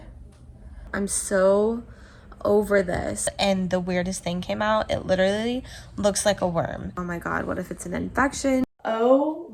I'm so over this. And the weirdest thing came out. It literally looks like a worm. Oh my God, what if it's an infection? Oh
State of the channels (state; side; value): identical; both; correlation 1.00